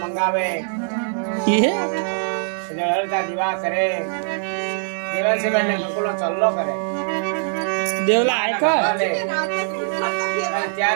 મંગાવે, હળતા દીવા કરે, દેવનસીબેનને ગોકુળનો ચલ્લો કરે. દેવલા આયકા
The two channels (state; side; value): silent; left; digital silence